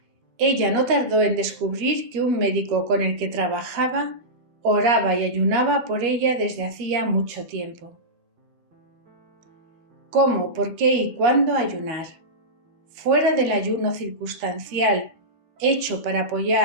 Ella no tardó en descubrir que un médico con el que trabajaba oraba y ayunaba por ella desde hacía mucho tiempo. ¿Cómo, por qué y cuándo ayunar? Fuera del ayuno circunstancial, hecho para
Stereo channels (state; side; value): late; left; 13 ms